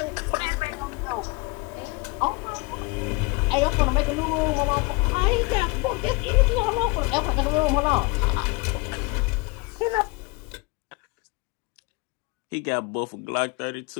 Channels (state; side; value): quieter; right; 25.9 dB